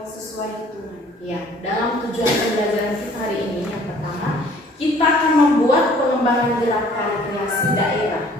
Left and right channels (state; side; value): normal; both; correlation 0.55